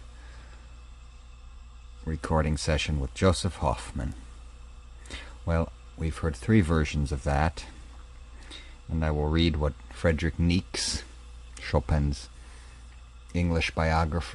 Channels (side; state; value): both; identical; correlation 1.00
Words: recording session with Joseph Hoffman. Well, we've heard 3 versions of that, and I will read what Friedrich Niecks, Chopin's English